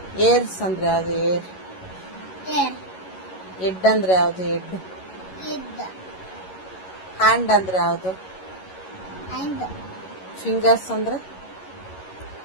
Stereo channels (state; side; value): late; right; 11 ms